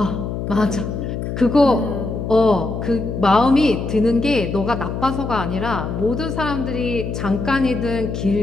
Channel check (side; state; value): left; noise; hum, 4 dB below the sound